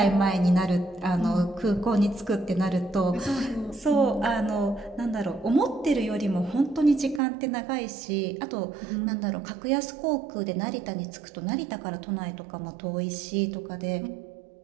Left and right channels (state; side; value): drops out; left; at 7.2 s